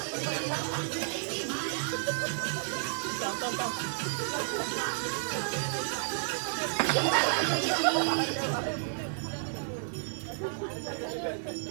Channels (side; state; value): left; silent; digital silence